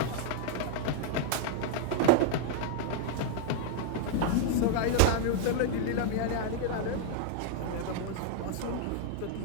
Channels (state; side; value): different; both; correlation -0.01